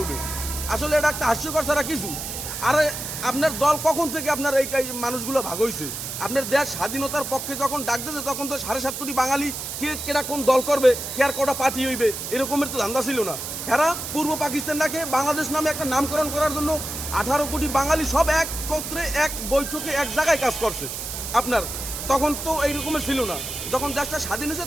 আসলে এটা একটা হাস্যকর ছাড়া কিছু। আরে আপনার দল কখন থেকে আপনার এই মানুষগুলো ভাগ হয়েছে? আপনার দেশ স্বাধীনতার পক্ষে যখন ডাক দিয়েছে তখন তো 7.5 কোটি বাঙালি কেটা কোন দল করবে, কে আর কটা পার্টি হইবে, এরকমের তো ধান্দা ছিল না। এরা পূর্ব পাকিস্তানটাকে বাংলাদেশ নামে একটা নামকরণ করার জন্য 18 কোটি বাঙালি সব একত্রে এক বৈঠকে এক জায়গায় কাজ করছে। আপনার তখন তো এইরকমের ছিল না। যখন দেশটা স্বাধীন হয়েছে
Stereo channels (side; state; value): right; noise; hiss, 6 dB below the sound